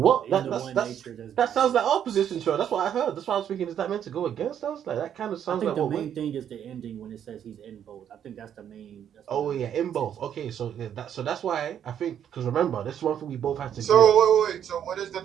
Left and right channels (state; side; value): quieter; left; 9.4 dB